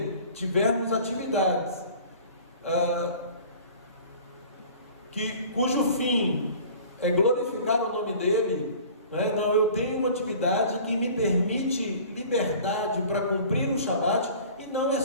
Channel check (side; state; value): both; inverted; correlation -0.45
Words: tivermos atividades cujo fim é glorificar o nome dele, não, eu tenho uma atividade que me permite liberdade para cumprir o Shabat, e não é